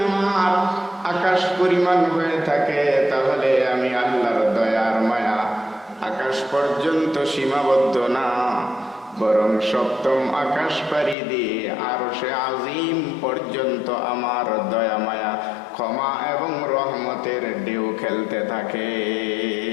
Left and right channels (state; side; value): drops out; right; at 11.2 s